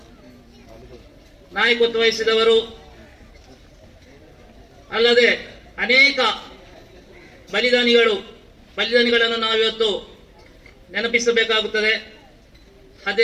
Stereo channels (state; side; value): identical; both; correlation 1.00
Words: ನಾಯಕತ್ವ ವಹಿಸಿದವರು ಅಲ್ಲದೆ ಅನೇಕ ಬಲಿದಾನಿಗಳನ್ನು ನಾವಿವತ್ತು ನೆನಪಿಸಬೇಕಾಗುತ್ತದೆ.